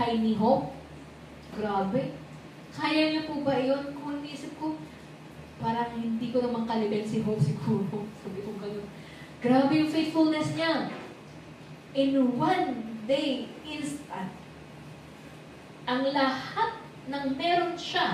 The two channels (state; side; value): identical; both; correlation 1.00